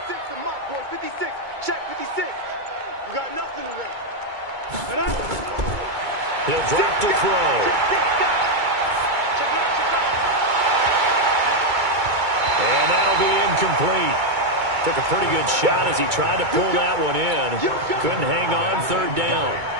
the mic, boys. 56. Check 56. You got nothing to win. He'll drop to throw. And that'll be incomplete. Took a pretty good shot as he tried to pull that one in. Couldn't hang on 3rd down.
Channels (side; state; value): left; late; 2.2 ms